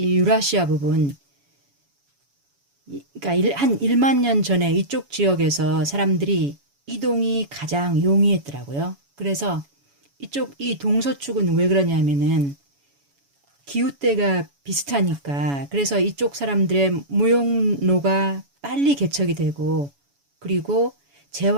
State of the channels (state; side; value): late; left; 7.1 ms